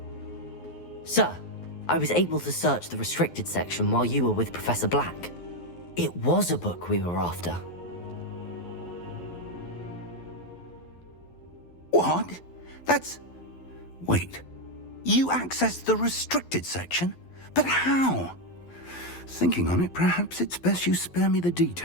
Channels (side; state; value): right; late; 12 ms